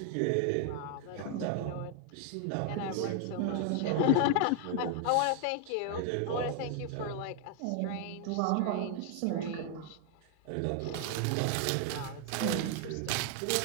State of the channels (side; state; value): both; different; correlation 0.00